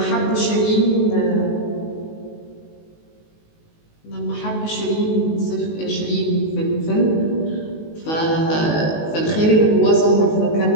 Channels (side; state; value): right; late; 19 ms